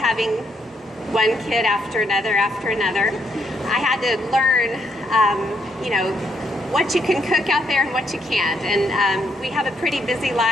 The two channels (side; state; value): both; normal; correlation 0.75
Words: one kid after another, I had to learn, you know, what you can cook out there and what you can't. And we have a pretty busy